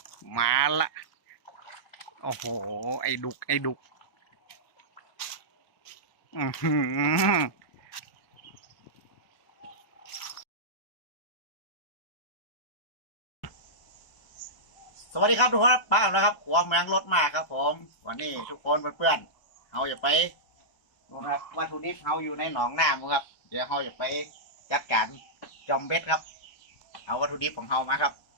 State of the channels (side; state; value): right; late; 1.2 ms